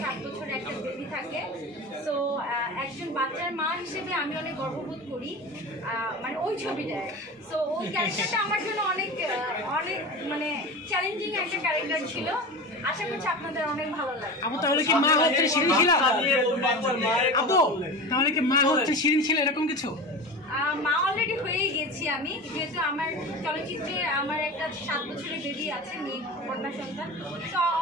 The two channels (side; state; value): both; normal; correlation 0.29